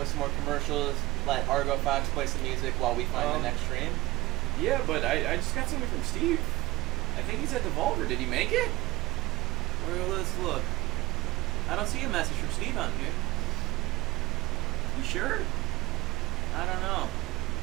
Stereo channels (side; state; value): left; quieter; 20.4 dB